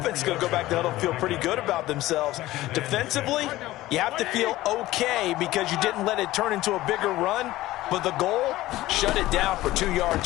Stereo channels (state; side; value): quieter; right; 16.7 dB